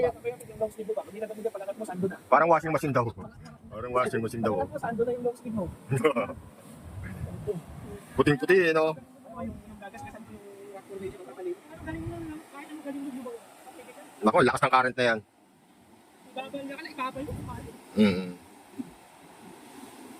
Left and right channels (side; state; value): both; identical; correlation 1.00